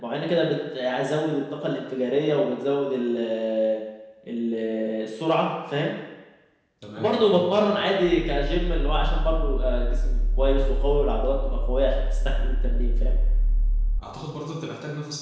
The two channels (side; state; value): both; identical; correlation 1.00